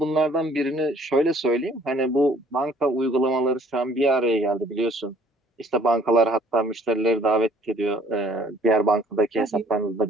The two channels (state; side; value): normal; both; correlation 0.58